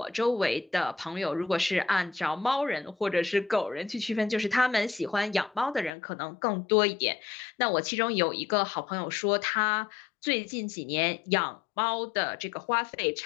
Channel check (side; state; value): right; drops out; at 5.9 s